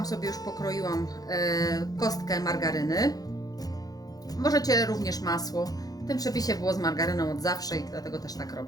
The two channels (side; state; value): right; late; 0.18 ms